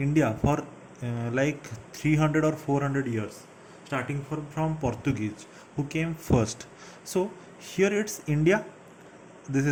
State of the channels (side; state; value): both; identical; correlation 1.00